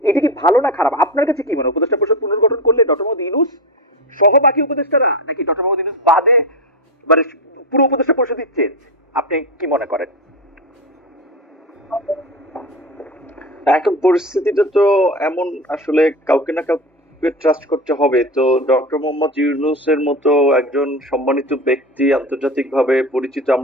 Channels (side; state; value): both; normal; correlation 0.21